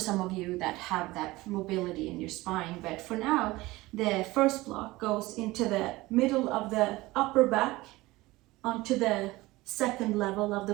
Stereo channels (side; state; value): left; quieter; 19.7 dB